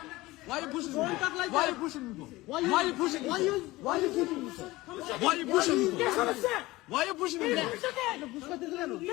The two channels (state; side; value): quieter; right; 19.5 dB